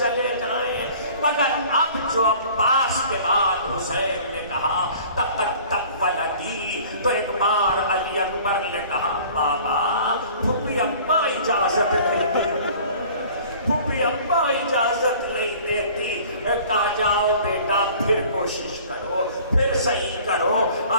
جائیں؟ مگر اب جو عباس کے بعد حسین نے کہا تقدم ولدی، تو ایک بار علی اکبر نے کہا بابا پھپھی اماں اجازت نہیں دیتی، پھپھی اماں اجازت نہیں دیتی۔ کہا جاؤ بیٹا پھر کوشش کرو، پھر صحیح کرو۔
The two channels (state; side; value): inverted; both; correlation -0.48